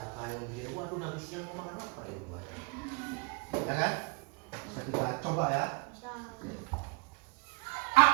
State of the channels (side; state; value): left; quieter; 31.6 dB